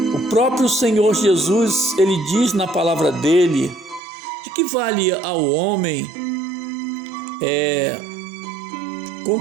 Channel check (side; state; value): left; drops out; at 4.0 s